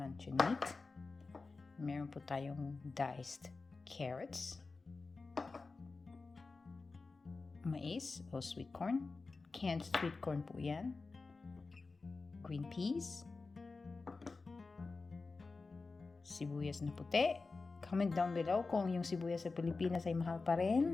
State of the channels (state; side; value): quieter; right; 4.0 dB